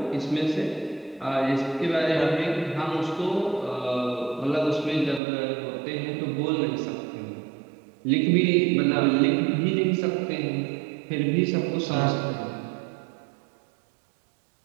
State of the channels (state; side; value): drops out; left; at 5.2 s